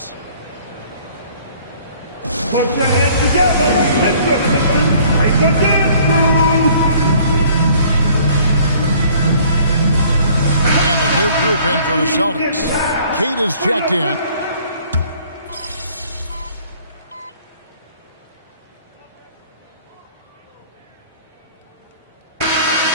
Put your hands together. Let the Pistons take the dance move. And a new group in for the Celtics. Kate is checked in.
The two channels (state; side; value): inverted; both; correlation -0.56